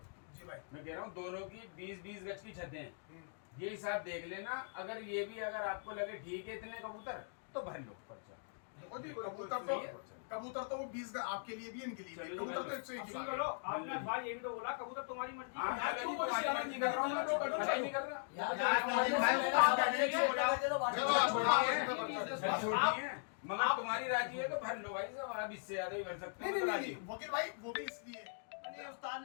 जी भाई, मैं कह रहा हूँ दोनों की 20-20 गज की छतें हैं, ये हिसाब देख लेना। अगर ये भी अगर आपको लगे ठीक है इतने कबूतर तो भर लो पर्चा। देखो जी, कबूतर तो वो 20 आपके लिए भी, इनके लिए भी। चलो, कबूतर तो 101 की बात है। चलो, आपने भाई ये भी तो बोला, कबूतर तुम्हारी मर्जी। हाँ चलो जी, तुम्हारी मर्जी कर रहा हूँ मैं, तो मना ही नहीं कर रहा। छोटी है मगर तुम्हारी राजी है तो भर लो भाई साहब, अब इससे ज्यादा ही भर सकते हो राजी। वकील भाई वो भी इसलिए ये उस्ताद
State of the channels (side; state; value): right; silent; digital silence